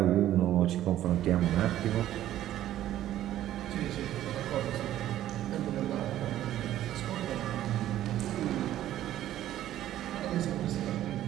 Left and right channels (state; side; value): quieter; left; 12.9 dB